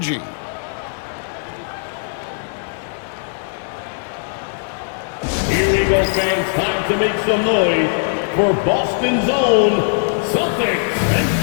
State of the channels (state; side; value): silent; right; 63 dB below the other